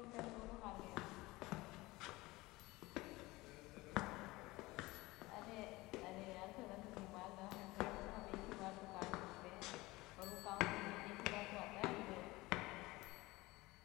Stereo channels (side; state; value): right; quieter; 20.7 dB